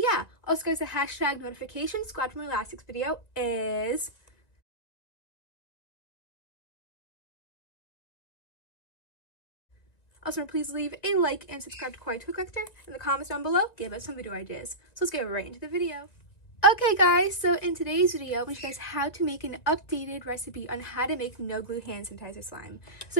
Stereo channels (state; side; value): late; right; 1.9 ms